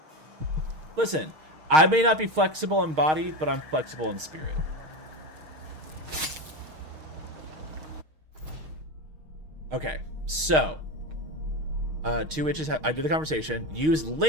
Listen, I may not be flexible in body, but I'm flexible in spirit. Okay, so two witches I did the conversation. Use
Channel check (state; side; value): late; left; 6.4 ms